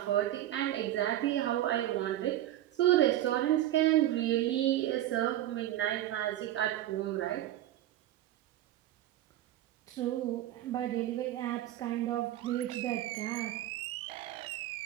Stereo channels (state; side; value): quieter; left; 13.6 dB